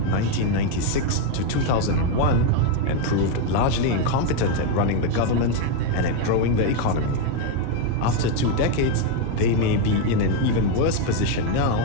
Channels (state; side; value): different; both; correlation 0.02